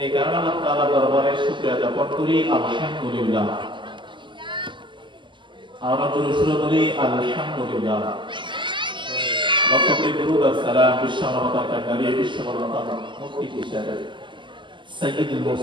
এই কারণে আল্লাহ তাআলার দরবারে শুকরিয়া জ্ঞাপন করি আলহামদুলিল্লাহ। আমরা শুরু করি আলহামদুলিল্লাহ। লক্ষ কোটি দুরূদ আর সালাম বিশ্বমানবতার নবী বিশ্বমানবতার মুক্তি হিসেবে সাইয়্যিদুল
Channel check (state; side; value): late; left; 0.24 ms